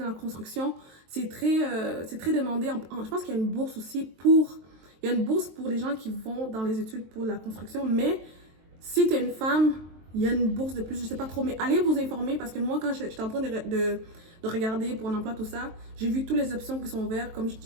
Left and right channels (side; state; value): left; late; 23 ms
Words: la construction, c'est très demandé. Je pense qu'il y a une bourse aussi il y a une bourse pour les gens qui vont dans les études pour la construction, mais si tu es une femme, il y a une bourse de plus, je sais pas trop, mais allez vous informer parce que moi, quand j'étais en train de regarder pour un emploi, tout ça, j'ai vu toutes les options qui sont ouvertes, comme